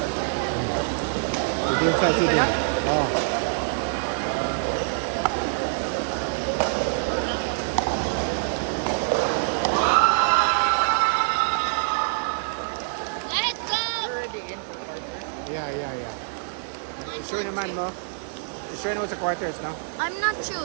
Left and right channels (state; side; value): silent; left; digital silence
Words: Yeah. Sure naman, no? You sure know it's a quarters, no? I'm not